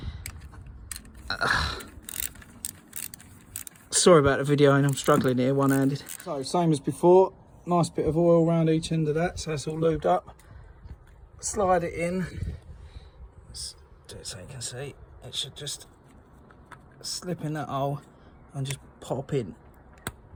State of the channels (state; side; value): identical; both; correlation 1.00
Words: Sorry about the video, and I'm struggling here one-handed. So same as before, nice bit of oil around each end of that, so it's all lubed up. Slide it in. Let's do it so you can see. It should just slip in that hole and just pop in.